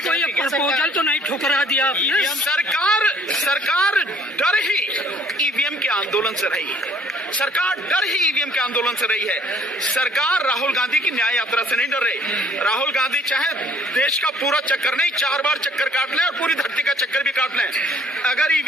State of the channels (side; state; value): both; normal; correlation 0.59